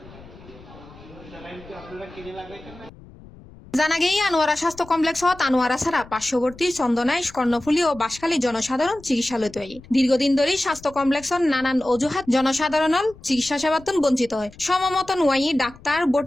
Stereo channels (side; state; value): left; noise; rumble, 21 dB below the sound